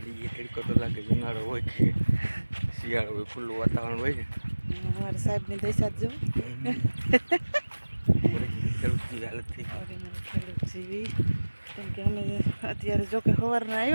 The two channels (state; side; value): inverted; both; correlation -1.00